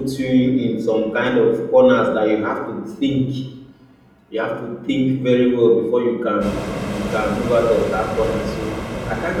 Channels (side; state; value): both; identical; correlation 1.00